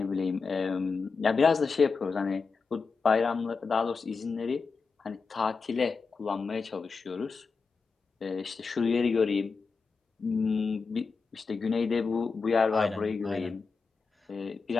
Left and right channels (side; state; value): right; quieter; 4.8 dB